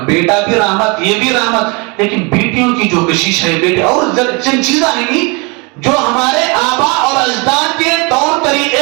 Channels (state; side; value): quieter; left; 29.8 dB